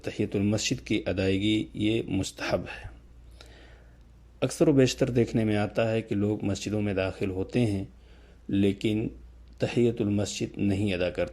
تحیۃ المسجد کی ادائیگی یہ مستحب ہے۔ اکثر و بیشتر دیکھنے میں آتا ہے کہ لوگ مسجدوں میں داخل ہوتے ہیں لیکن تحیۃ المسجد نہیں ادا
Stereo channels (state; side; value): identical; both; correlation 1.00